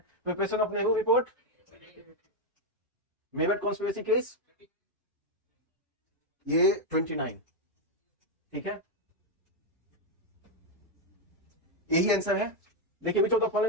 Preparation of Nehru report, Meerut conspiracy case, ये 29, ठीक है। यही आंसर है। देखिए, which of the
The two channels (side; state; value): both; normal; correlation 0.02